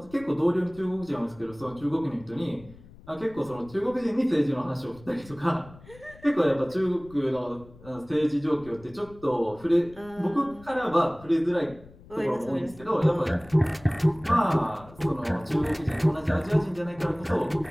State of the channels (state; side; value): noise; left; rumble, 22 dB below the sound